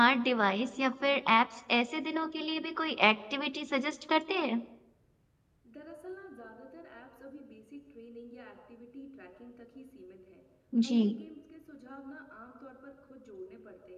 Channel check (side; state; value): both; identical; correlation 1.00